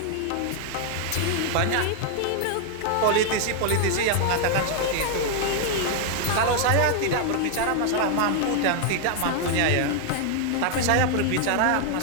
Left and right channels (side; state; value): both; different; correlation 0.00